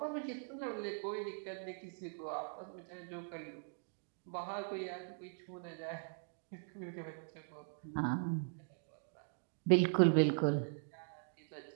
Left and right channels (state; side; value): silent; left; digital silence